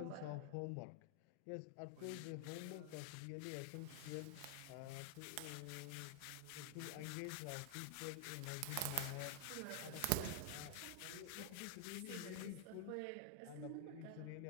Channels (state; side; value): different; both; correlation 0.00